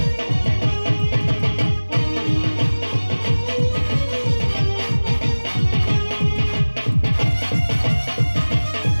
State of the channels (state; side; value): inverted; both; correlation -1.00